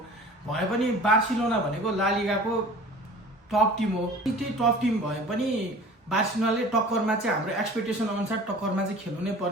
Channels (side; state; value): both; normal; correlation 0.43